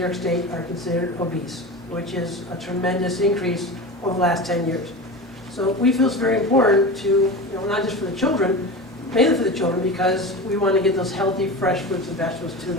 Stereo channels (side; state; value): right; noise; hum, 29 dB below the sound